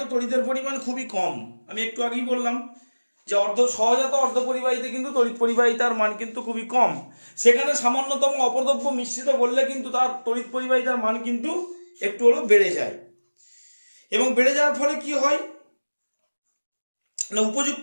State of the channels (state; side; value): inverted; both; correlation -1.00